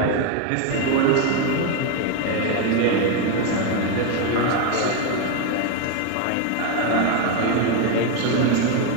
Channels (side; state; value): both; different; correlation 0.02